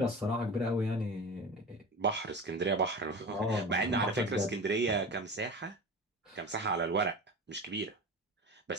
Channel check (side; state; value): both; normal; correlation 0.32